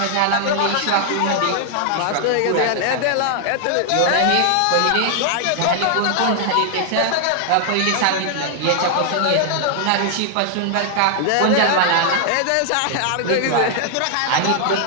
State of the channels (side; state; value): both; different; correlation 0.00